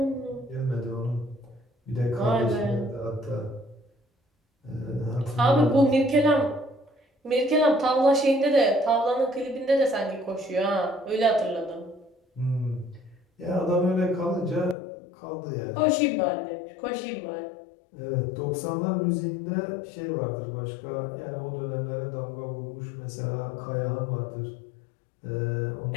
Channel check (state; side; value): drops out; right; at 14.8 s